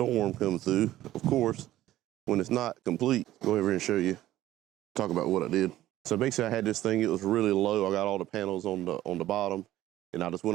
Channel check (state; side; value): quieter; left; 14.4 dB